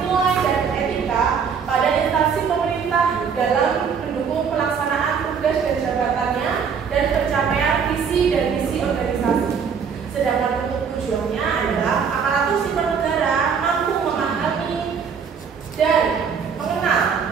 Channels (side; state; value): left; quieter; 6.5 dB